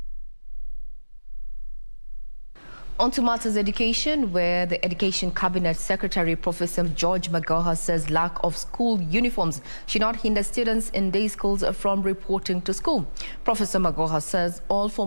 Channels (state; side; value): inverted; both; correlation -1.00